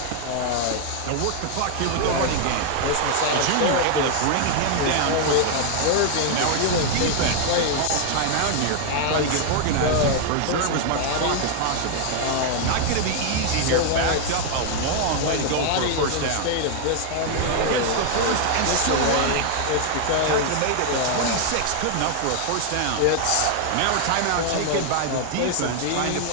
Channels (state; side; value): different; both; correlation 0.00